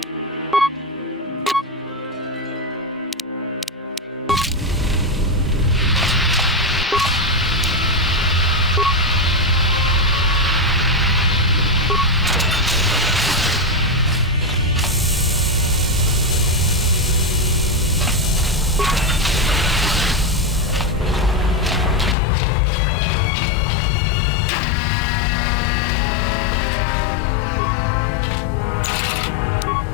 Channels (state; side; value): drops out; right; at 22.2 s